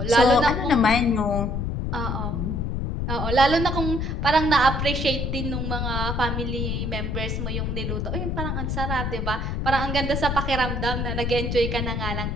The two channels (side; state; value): left; noise; rumble, 1 dB below the sound